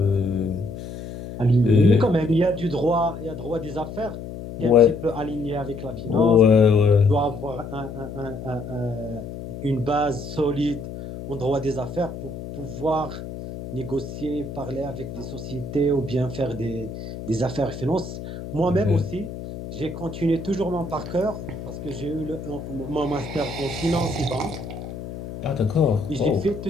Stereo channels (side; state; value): left; noise; hum, 10 dB below the sound